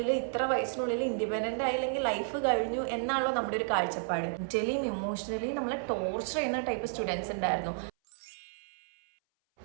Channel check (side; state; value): left; silent; 56 dB below the other